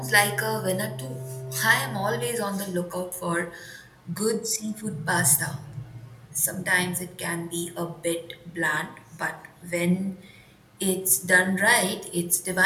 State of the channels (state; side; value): identical; both; correlation 1.00